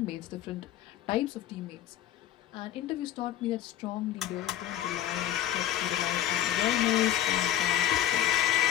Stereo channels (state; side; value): quieter; right; 12.0 dB